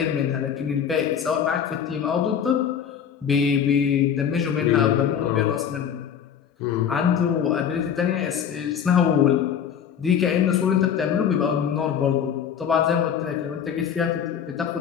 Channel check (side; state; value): right; quieter; 8.3 dB